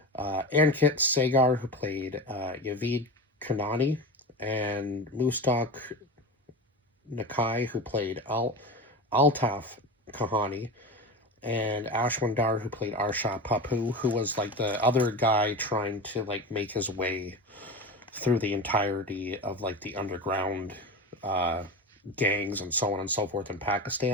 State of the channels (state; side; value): normal; both; correlation 0.25